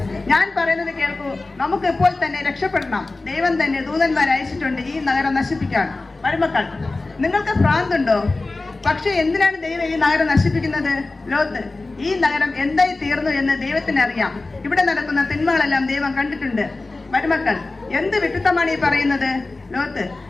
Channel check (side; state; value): right; quieter; 3.3 dB